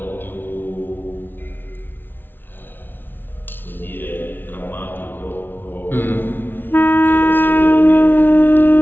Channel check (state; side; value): late; right; 0.097 ms